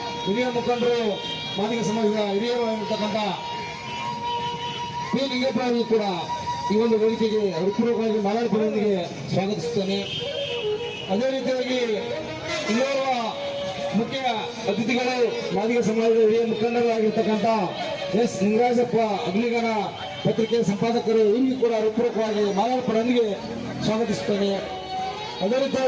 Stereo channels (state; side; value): identical; both; correlation 1.00